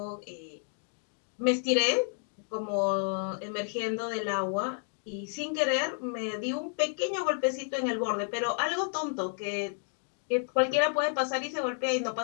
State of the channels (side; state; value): right; silent; 57 dB below the other